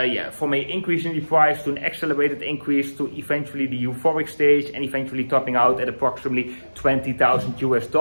increase in the price to an accelerated increase to eventually the euphoric stage, and eventually topping out at approximately 20,000 US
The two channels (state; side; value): inverted; both; correlation -1.00